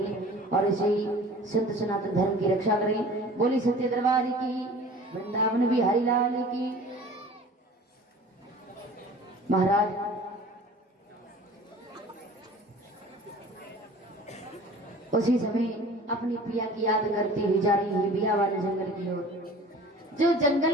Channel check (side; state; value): both; normal; correlation 0.44